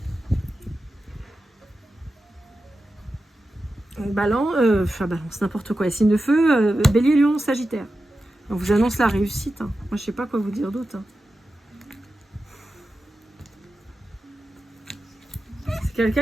Balance, n'importe quoi. Signe de feu, Bélier, Lion, Sagittaire. On vous annonce la réussite. Hein. Moi je sais pas quoi vous dire d'autre. Hein. C'est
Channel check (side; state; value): both; normal; correlation 0.92